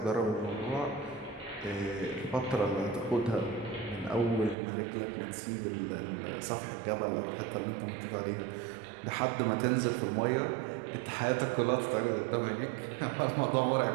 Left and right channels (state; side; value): drops out; left; at 4.5 s